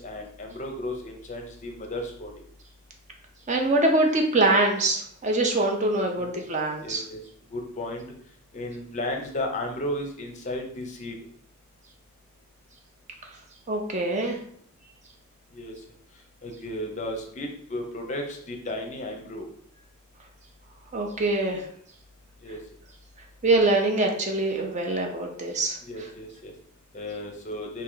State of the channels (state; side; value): normal; both; correlation 0.15